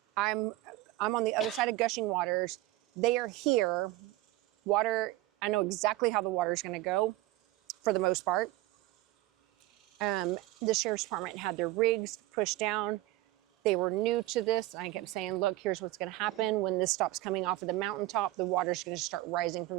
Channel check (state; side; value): quieter; left; 16.8 dB